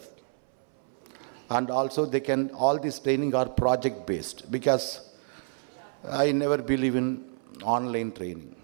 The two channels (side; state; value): left; silent; 59 dB below the other